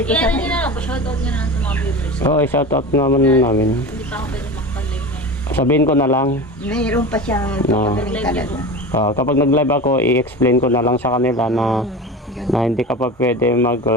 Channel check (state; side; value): normal; both; correlation 0.30